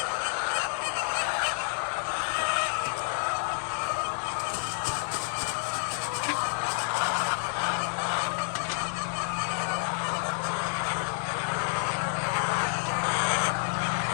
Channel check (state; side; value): silent; right; 56 dB below the other